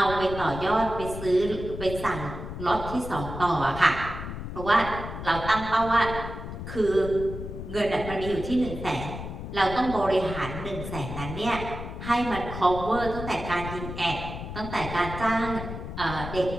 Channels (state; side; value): noise; left; rumble, 8 dB below the sound